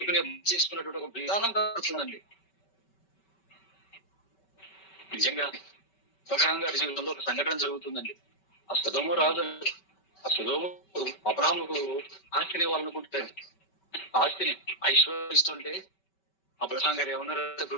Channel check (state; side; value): late; right; 5.2 ms